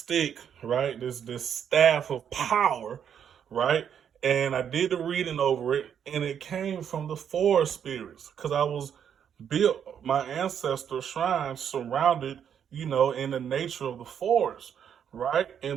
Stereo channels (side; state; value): left; quieter; 8.4 dB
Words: right? This staff of power, right? And I did the reading over it, and it came from the forest spirits because I was built my ancestor shrine surrounded, in the nature of the forest, right?